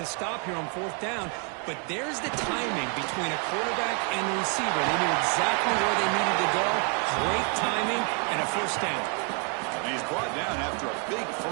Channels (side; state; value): left; quieter; 39.1 dB